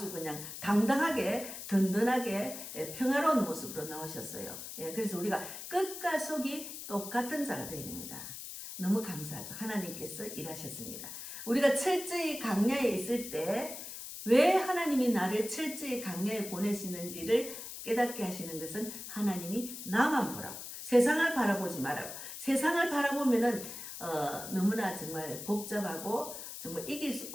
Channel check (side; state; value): left; noise; hiss, 9 dB below the sound